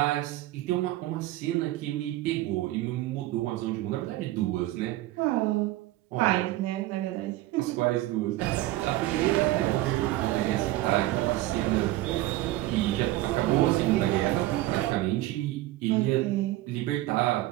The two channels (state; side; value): quieter; left; 16.4 dB